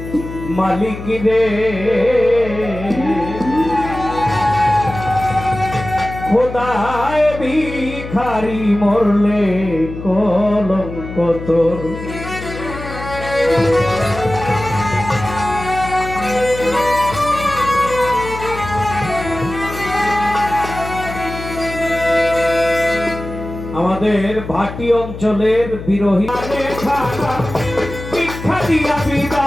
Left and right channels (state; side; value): noise; left; hum, 10 dB below the sound